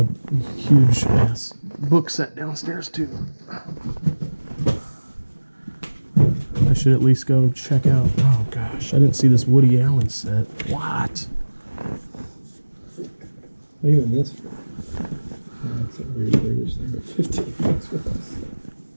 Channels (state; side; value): inverted; both; correlation -1.00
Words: huge ass book set downstairs too. I should at least go check out. Oh gosh, I didn't see this Woody Allen set. What? Even this. That's a weird British thing, but 15 bucks for us.